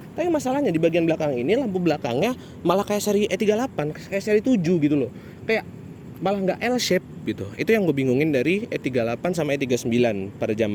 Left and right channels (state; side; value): identical; both; correlation 1.00